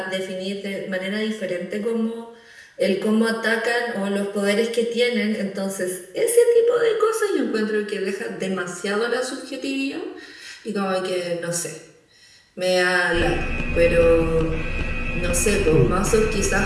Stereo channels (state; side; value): identical; both; correlation 1.00